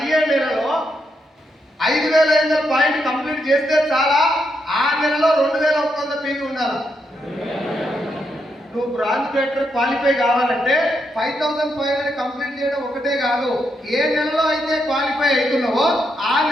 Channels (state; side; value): normal; both; correlation 0.80